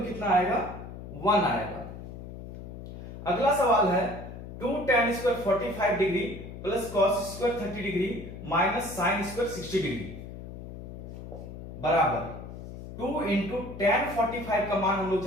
कितना आएगा, 1 आएगा। अगला सवाल है, 2 tan square 45 degree plus cos square 30 degree minus sine square 60 degree बराबर 2 इंटू tan 45 का मान हम लोग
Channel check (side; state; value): left; noise; hum, 12 dB below the sound